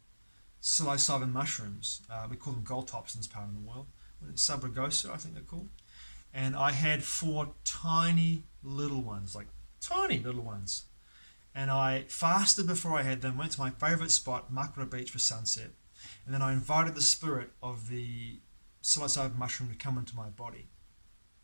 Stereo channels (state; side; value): inverted; both; correlation -1.00